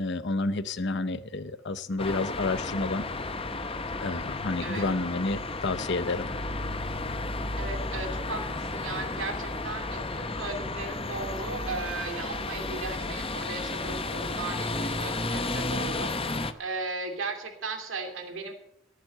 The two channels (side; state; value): both; normal; correlation 0.31